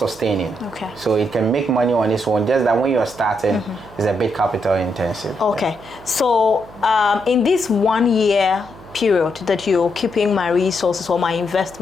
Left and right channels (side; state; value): right; noise; hum, 21 dB below the sound